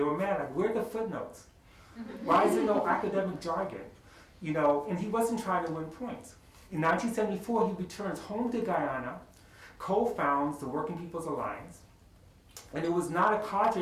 were mad, like, where are the footnotes? Why is there no academic jargon? You know, and he wasn't trying to win points. In 1974, he returns home to Guyana, co-founds the Working People's Alliance, and it was not a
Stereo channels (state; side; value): identical; both; correlation 1.00